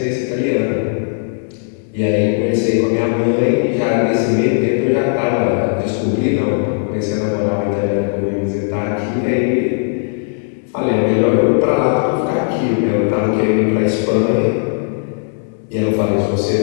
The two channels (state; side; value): silent; right; 66 dB below the other